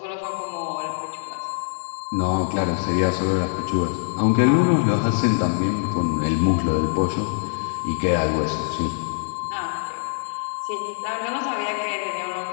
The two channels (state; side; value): silent; right; digital silence